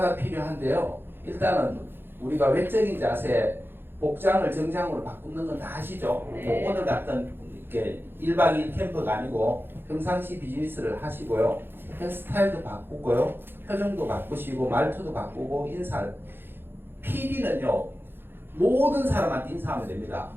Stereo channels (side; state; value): left; late; 0.10 ms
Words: 필요한데요. 일단은 우리가 외적인 자세, 복장을 정장으로 바꾸는 건 다 아시죠? 네. 뭐 오늘 같은 이렇게 1박 2일 캠프가 아니고 평상시 비즈니스를 하시고요. 헤어스타일도 바꾸고요. 표정도 바꾸시고 말투도 바꾸고 인사를. PD는요. 모든 사람한테 인사하면 됩니다.